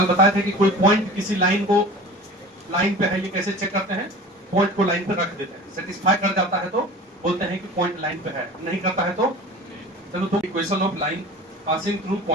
कल बताए थे कि कोई पॉइंट किसी लाइन पे है, ये कैसे चेक करते हैं? पॉइंट को लाइन पे रख देते हैं, सेटिस्फाई कर जाता है तो बोलते हैं कि पॉइंट लाइन पे है, नहीं करता है तो चलो। तो equation of line passing through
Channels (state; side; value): normal; both; correlation 0.38